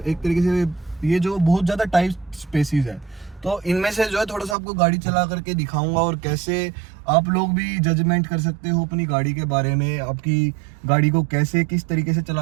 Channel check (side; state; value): left; drops out; at 4.5 s